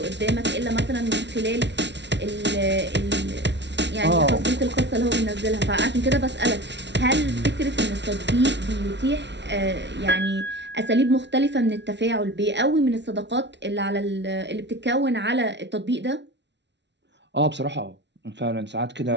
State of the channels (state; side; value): late; left; 0.51 ms